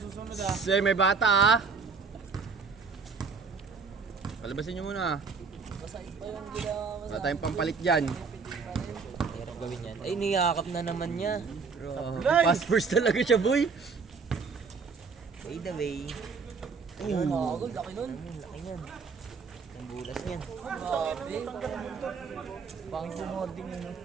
ha. Say, may bata ah. Palabasin nyo muna. Wala tayong pampalit dyan. Hirap gawin yan. Ay, niyakap na naman niya. Fast first talaga siya, boy. By the way. Ayun. Laki nun. Laki niyan. Ang bulas niyan. Pang sumording yun.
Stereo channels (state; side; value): quieter; left; 5.1 dB